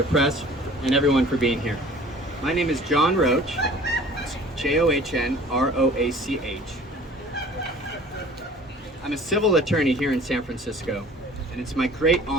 press, and everyone for being here. My name is John Roach. It's Johnroach. I'm a civil attorney here in San Francisco, and it's my great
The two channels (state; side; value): normal; both; correlation 0.48